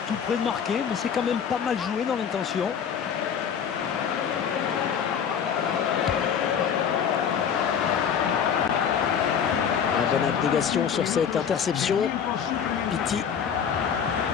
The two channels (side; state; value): right; quieter; 7.7 dB